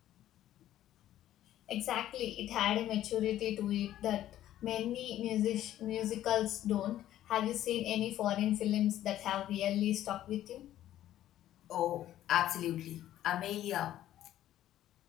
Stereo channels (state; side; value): quieter; right; 12.8 dB